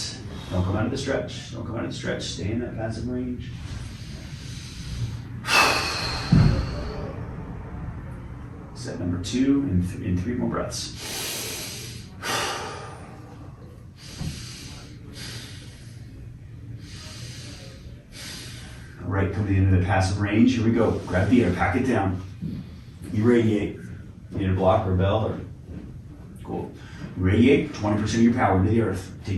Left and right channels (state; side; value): identical; both; correlation 1.00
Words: Don't come out of the stretch. Don't come out of the stretch. Stay in that passive range. Set number 2 in 3 more breaths. All right, come to the end of the passive range. Here we go. Grab the air, pack it down. Irradiate. You need a block or a bell or cool. Irradiate 20% of your power into the earth.